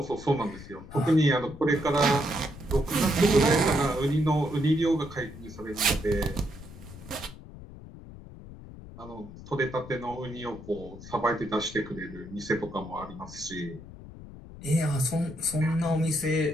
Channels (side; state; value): left; noise; rumble, 16 dB below the sound